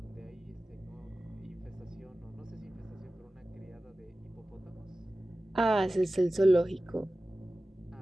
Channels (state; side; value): normal; both; correlation 0.96